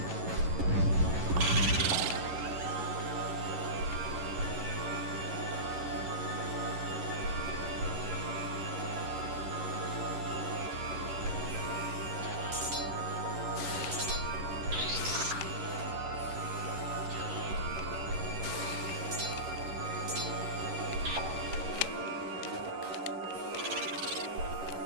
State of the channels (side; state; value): left; late; 11 ms